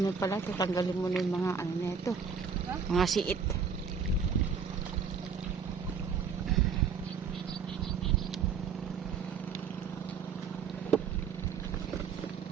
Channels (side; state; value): left; quieter; 6.1 dB